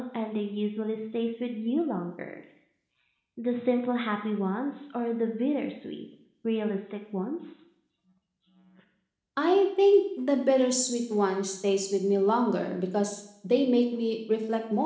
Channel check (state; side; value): identical; both; correlation 1.00